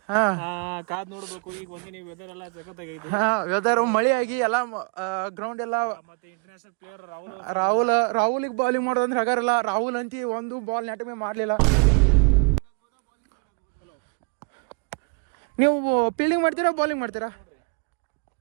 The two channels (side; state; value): left; quieter; 36.9 dB